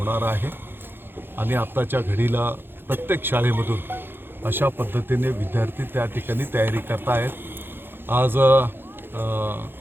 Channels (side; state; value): left; late; 0.10 ms